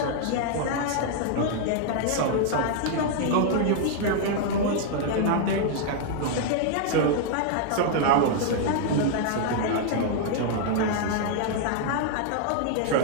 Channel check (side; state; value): both; different; correlation -0.01